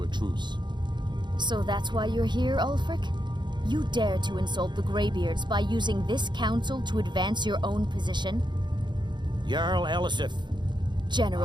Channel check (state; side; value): late; left; 0.22 ms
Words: a truce. So that's why you're here, Ulfric? You dare to insult the Greybeards by using this council to advance your own position? Jarl Elisif.